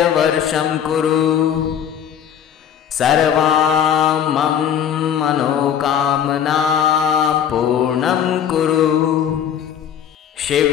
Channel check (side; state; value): right; quieter; 9.0 dB